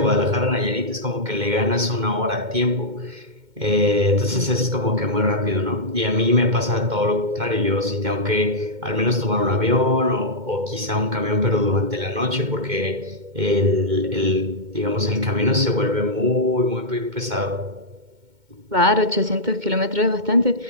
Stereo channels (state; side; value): late; left; 2.2 ms